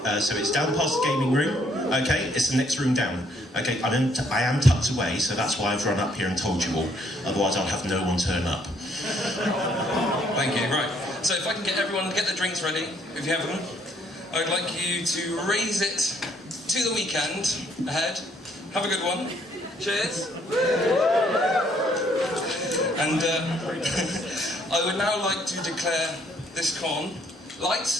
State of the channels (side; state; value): both; normal; correlation 0.67